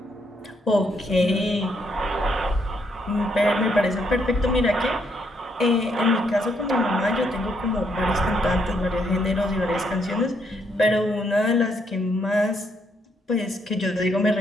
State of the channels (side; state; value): both; normal; correlation 0.74